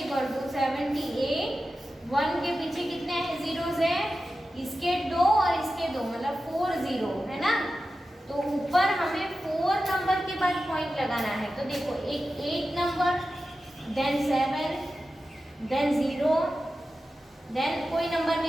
to 78, 1 के पीछे कितने जीरोस है, इसके 2 और इसके 2, मतलब 4 0 है ना, तो ऊपर हमें 4 नंबर के बाद पॉइंट लगाना है, तो देखो एक 8 नंबर, देन 7, देन 0, देन कोई नंबर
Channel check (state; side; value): normal; both; correlation 0.93